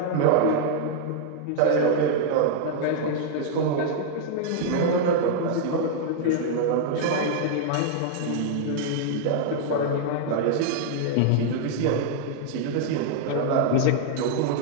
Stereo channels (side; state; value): both; different; correlation -0.01